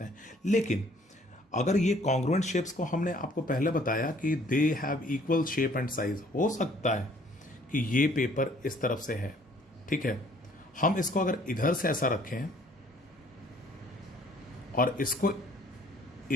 हैं. लेकिन अगर ये कॉन्ग्रुएंट शेप्स को हमने आपको पहले बताया कि दे have equal shape and size, हो सकता है कि ये पेपर इस तरफ से है. ठीक है. हम इसको अगर इधर से ऐसा रखें और इसको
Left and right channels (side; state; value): both; normal; correlation 0.59